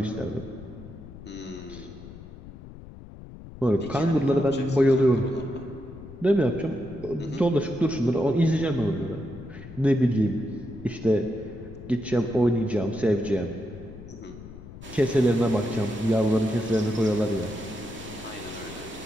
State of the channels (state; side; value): noise; left; rumble, 16 dB below the sound